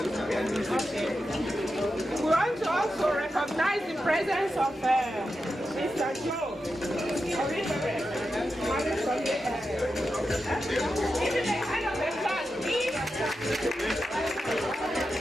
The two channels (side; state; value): both; normal; correlation 0.89